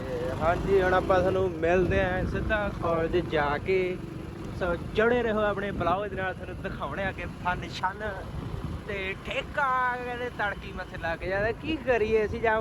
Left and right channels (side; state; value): both; identical; correlation 1.00